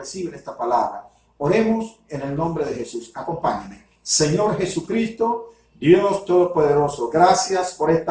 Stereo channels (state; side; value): identical; both; correlation 1.00